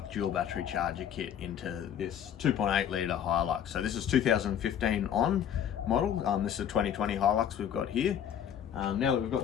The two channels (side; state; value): right; quieter; 9.3 dB